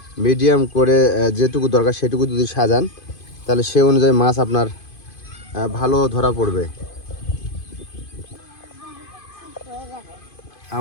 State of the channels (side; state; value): right; late; 2.5 ms